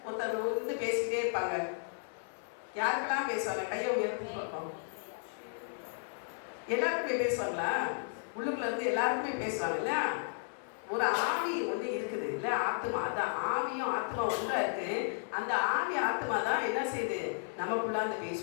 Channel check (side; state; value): right; silent; 55 dB below the other